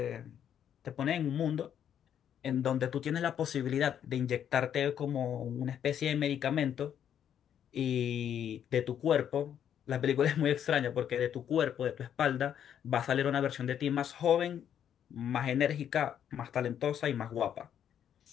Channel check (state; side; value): quieter; right; 9.4 dB